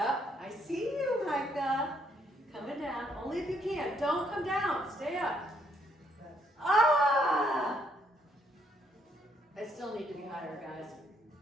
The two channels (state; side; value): normal; both; correlation 0.70